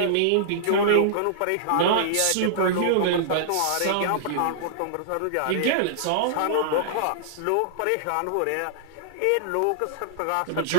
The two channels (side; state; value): both; different; correlation -0.01